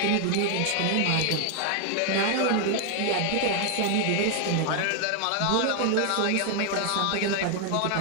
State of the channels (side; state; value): both; different; correlation 0.00